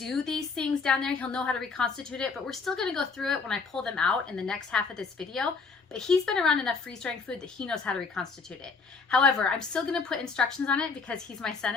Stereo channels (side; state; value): right; quieter; 4.7 dB